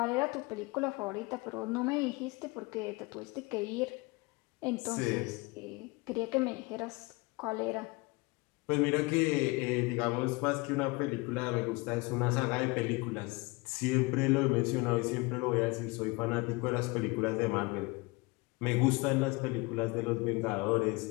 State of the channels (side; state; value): right; quieter; 25.4 dB